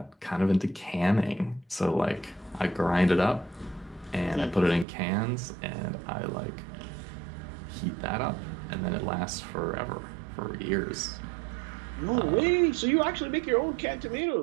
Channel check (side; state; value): left; drops out; at 4.9 s